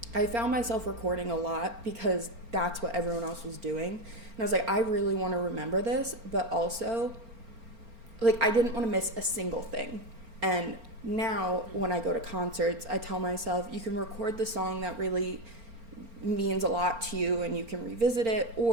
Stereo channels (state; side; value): late; left; 4.4 ms